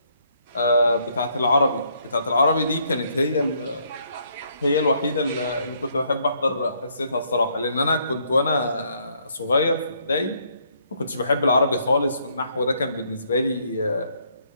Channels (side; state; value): both; inverted; correlation -0.70